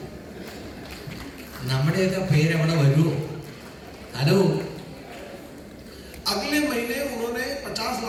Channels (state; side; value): identical; both; correlation 1.00